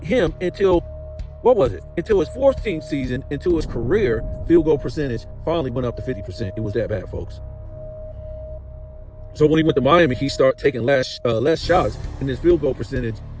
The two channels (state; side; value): identical; both; correlation 1.00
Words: him until, until his 14th season, until his career field goal percentage finally went up to 50%. It was that bad, folks. So when he went to Miami, he started taking less shots, and his field goal percentage